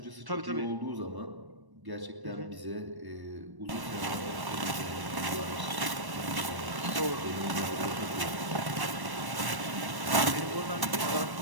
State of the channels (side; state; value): left; late; 1.1 ms